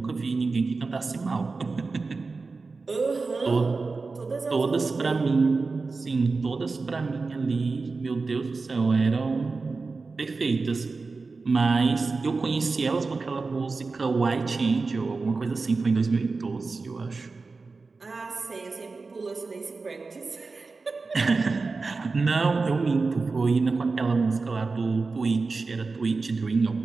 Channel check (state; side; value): quieter; left; 4.1 dB